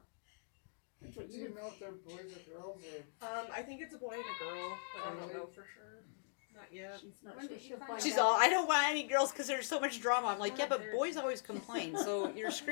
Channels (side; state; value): right; silent; digital silence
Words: That's what Do you you would. know if they're boys or girls or? I think it's a boy and a girl, but I don't know for sure. Not yet. She's not When sure. did you She'll find find She's out. all, I don't want any girls because there's so much drama. I'm like, yeah, but boys always complain, so you're